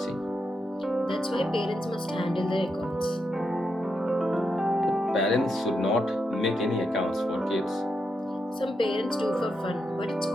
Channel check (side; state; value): both; normal; correlation 0.84